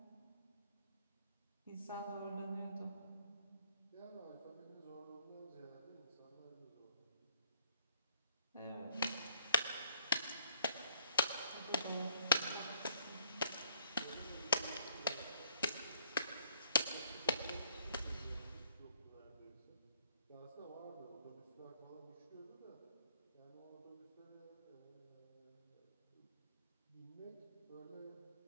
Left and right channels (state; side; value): inverted; both; correlation -0.63